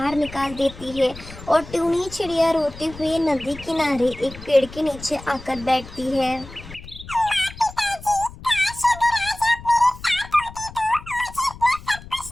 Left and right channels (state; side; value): noise; left; rumble, 16 dB below the sound